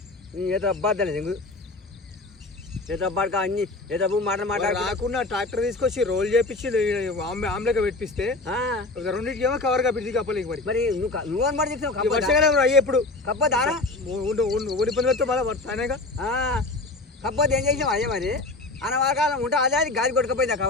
ఏదో అబ్బాద్దలే దెంగు ఏదో అబ్బాడుకా అన్ని ఏదో మాట రాకుండా ట్రాక్టర్ తీసుకొచ్చి రోల్ చేపించి ఆమ్లెట్ పెట్టిస్తే రెండింటికి ఏమో కవర్ కప్పింది కప్పలేక మరి నువ్వు అనమాట చెప్తావు వర్షాకాలం అయ్యే ఎప్పుడు కప్పదారా ఊరి పనులతో మళ్ళీ తానేగా కప్పదు ఏం చేసాం అయ్యే మరి అనవాకాలం ఉంటే అదే అది గాలి కొట్టుకుపోయింది ఆ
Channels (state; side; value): quieter; right; 3.1 dB